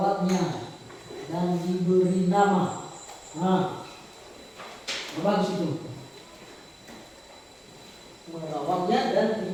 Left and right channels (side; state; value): both; identical; correlation 1.00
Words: dan diberi nama. Nah, bagus itu. Merawatnya dan